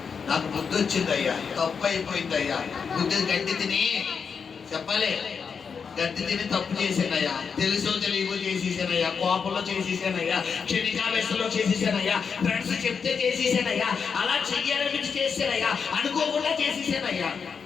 నాకు బుద్ధి వచ్చింది అయ్యా, తప్పు అయిపోయింది అయ్యా, బుద్ధి గడ్డి తిని చెప్పాలి, గడ్డి తిని తప్పు చేశానయ్యా, తెలుసో తెలియకో చేసేసానయ్యా, కోపంలో చేసేసానయ్యా, క్షణికావేశంలో చేసేసానయ్యా, ఫ్రెండ్స్ చెప్తే చేసేసానయ్యా, అలా చెయ్యాలనిపించి చేసానయ్యా, అనుకోకుండా చేసేసానయ్యా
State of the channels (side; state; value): right; quieter; 6.0 dB